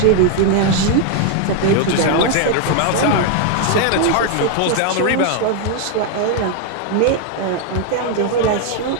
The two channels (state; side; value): different; both; correlation 0.01